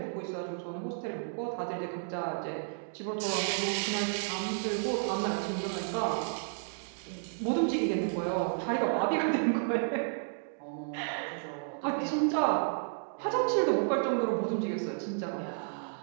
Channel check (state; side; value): silent; left; digital silence